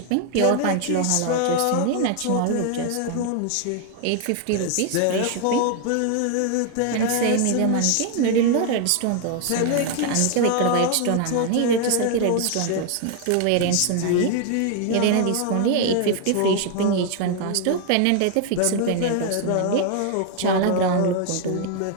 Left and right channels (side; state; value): both; different; correlation 0.00